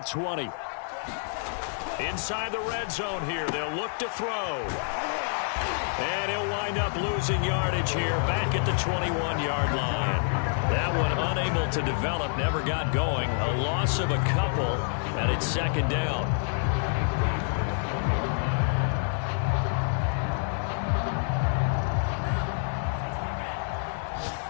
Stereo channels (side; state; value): right; silent; 60 dB below the other